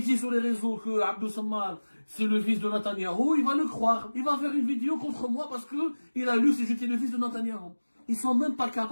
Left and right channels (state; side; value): inverted; both; correlation -1.00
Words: sur les réseaux que Abdou Sammar, c'est le fils de Netanyahou, il va le croire. Il va faire une vidéo contre moi parce que il a lu si j'étais le fils de Netanyahou. Ils sont même pas